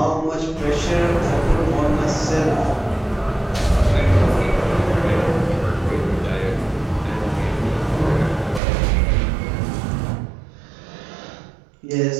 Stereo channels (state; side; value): drops out; left; at 8.6 s